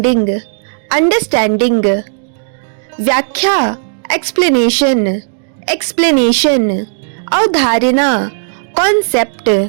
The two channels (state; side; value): silent; left; digital silence